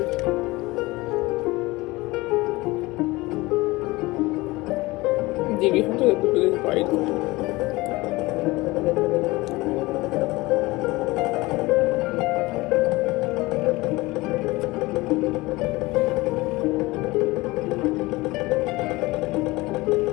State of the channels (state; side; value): quieter; right; 21.4 dB